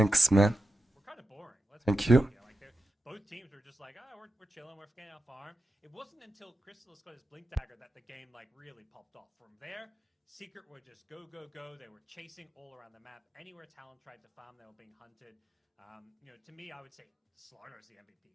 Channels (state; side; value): normal; both; correlation 0.90